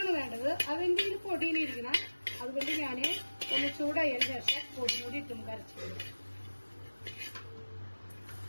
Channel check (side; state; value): both; inverted; correlation -1.00